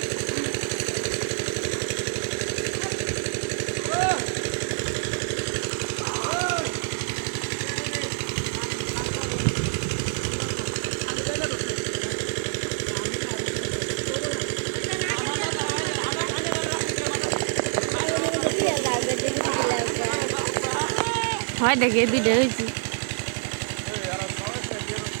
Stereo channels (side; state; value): left; silent; 61 dB below the other